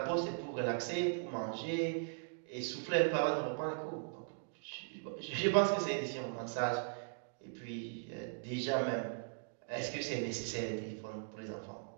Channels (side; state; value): left; silent; digital silence